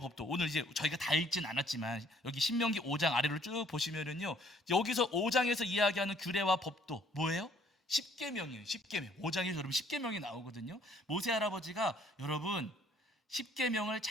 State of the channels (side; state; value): both; normal; correlation 0.61